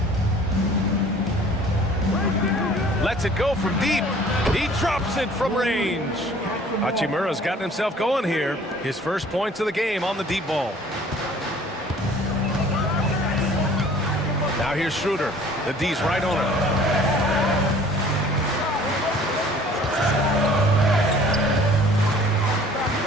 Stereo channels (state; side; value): normal; both; correlation 0.51